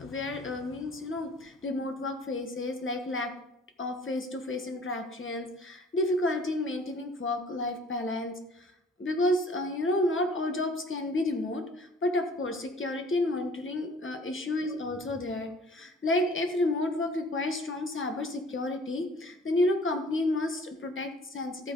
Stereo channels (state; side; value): normal; both; correlation 0.52